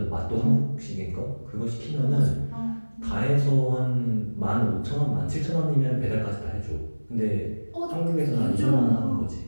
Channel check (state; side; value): inverted; both; correlation -1.00